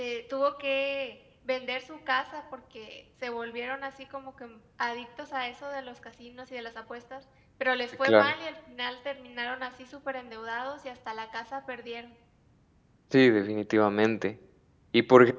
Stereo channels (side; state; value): both; identical; correlation 1.00